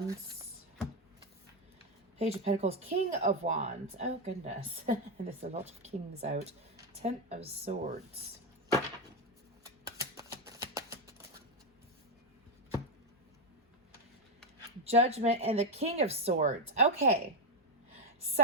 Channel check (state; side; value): normal; both; correlation 0.07